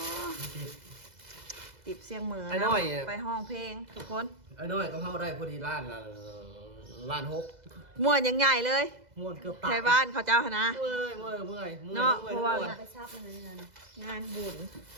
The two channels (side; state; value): left; late; 2.0 ms